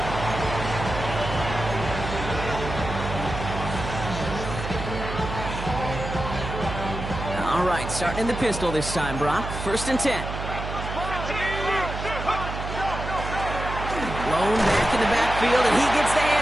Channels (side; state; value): right; noise; hum, 6 dB below the sound